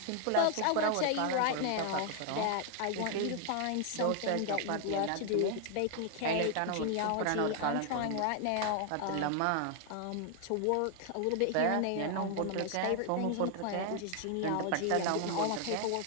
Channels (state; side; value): different; both; correlation 0.00